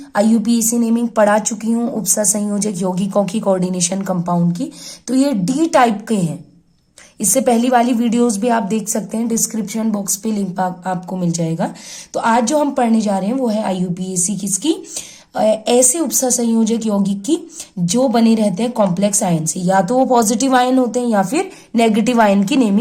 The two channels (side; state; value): both; identical; correlation 1.00